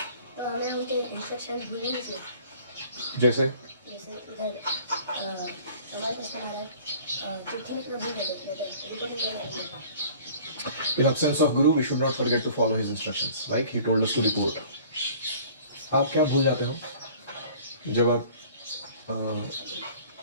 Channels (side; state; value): both; inverted; correlation -0.50